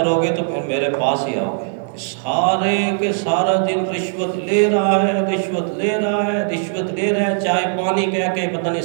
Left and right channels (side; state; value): left; silent; digital silence